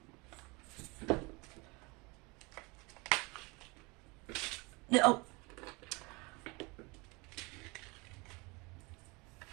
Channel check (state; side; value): quieter; left; 26.9 dB